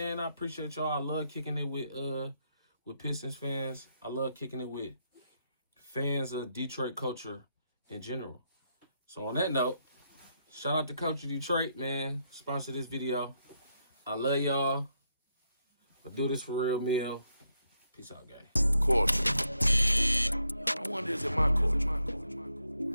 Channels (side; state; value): both; inverted; correlation -0.78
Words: I appreciate y'all. I love kicking it with Pistons fans. I love kicking it with fans of Detroit culture in general. So on that note, shout out to Culture Detroit, man. Sponsor this video. I love y'all. I do this for real meal. Peace out, gang. Culture. I wonder, is it my culture?